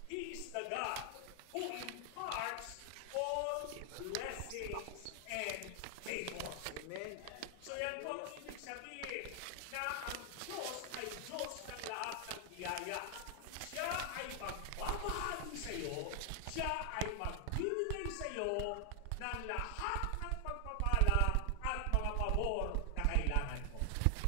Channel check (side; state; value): both; different; correlation 0.00